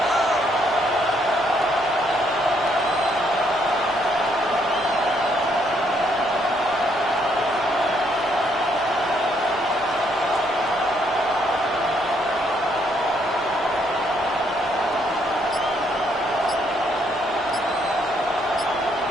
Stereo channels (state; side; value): noise; left; hum, 24 dB below the sound